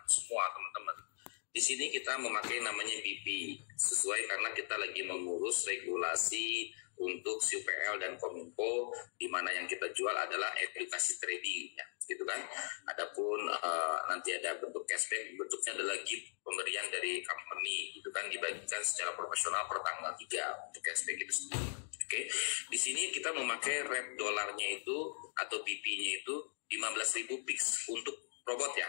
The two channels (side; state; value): right; silent; digital silence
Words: semua teman-teman, di sini kita memakai namanya BP sesuai karena kita lagi mengurus regulasi untuk UPL dan Kominfo, di mana yang kita jual adalah edukasi trading, ya, gitu kan. Adapun nanti ada bentuk cashback, bentuknya adalah gift pemberian dari company, gitu kan, dibagikan secara profesional per tanggal 3 untuk cashback itu sendiri. Oke, di sini kita memakai rate dolarnya itu atau BP-nya itu 15.000 pix untuk robot ya.